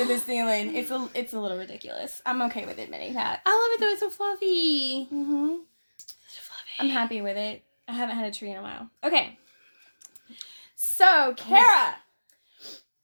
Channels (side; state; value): both; inverted; correlation -1.00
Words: the ceiling. It's a little ridiculous. I'm okay with admitting that. I love it though. It's so fluffy. Mm-hmm. So fluffy. I'm happy with it. I haven't had a tree in a while. Okay. So, Cara.